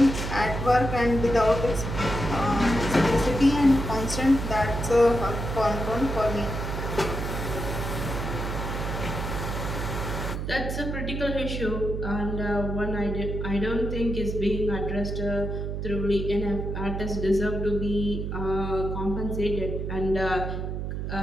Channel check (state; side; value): noise; right; hum, 3 dB below the sound